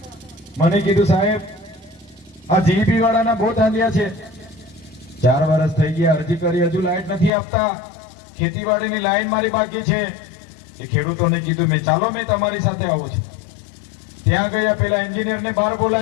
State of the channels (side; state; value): right; drops out; at 7.3 s